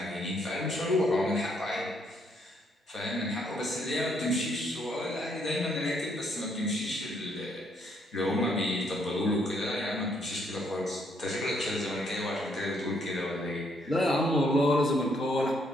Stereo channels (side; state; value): both; normal; correlation 0.71